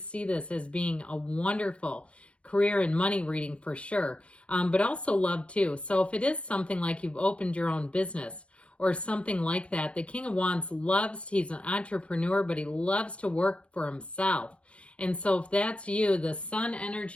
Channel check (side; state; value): right; late; 0.060 ms